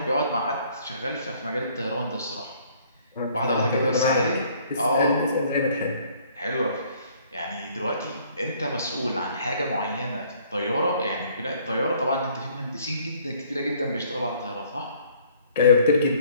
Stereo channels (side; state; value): both; inverted; correlation -0.60